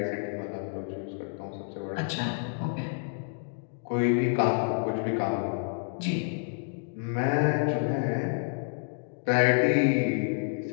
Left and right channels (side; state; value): right; silent; digital silence